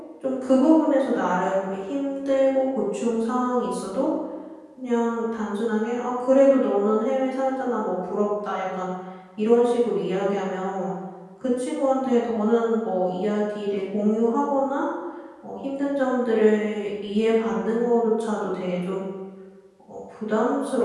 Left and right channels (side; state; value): both; identical; correlation 1.00